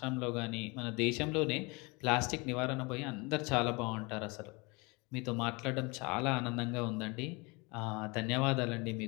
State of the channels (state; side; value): quieter; right; 27.6 dB